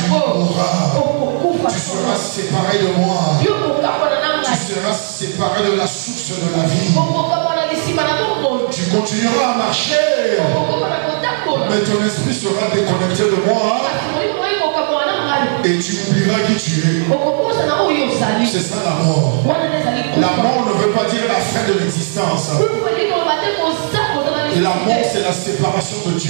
séparer de la source de la vie. Tu continueras à marcher, mais ton esprit sera déconnecté de moi et tu oublieras qui tu es. C'est ça la mort. La mort ne veut pas dire la fin de l'existence. La mort, c'est la séparation de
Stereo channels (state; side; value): silent; left; digital silence